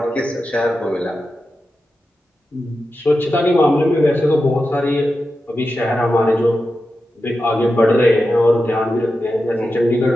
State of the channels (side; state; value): both; normal; correlation 0.91